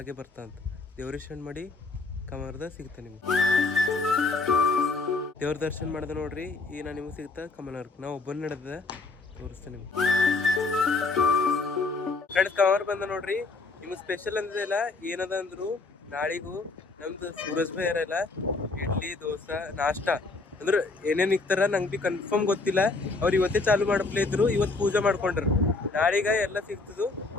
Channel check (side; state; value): right; quieter; 3.7 dB